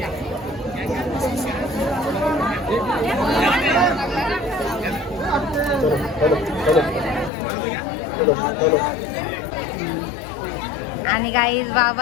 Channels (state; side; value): drops out; right; at 7.3 s